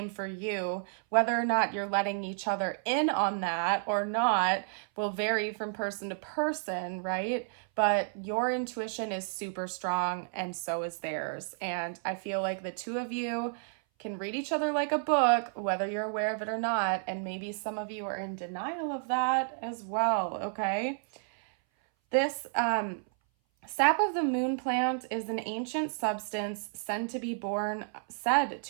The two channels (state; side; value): silent; left; 57 dB below the other